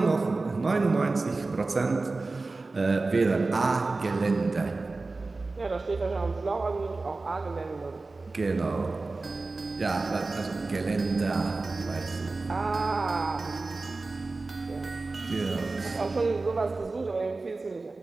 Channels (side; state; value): left; quieter; 3.5 dB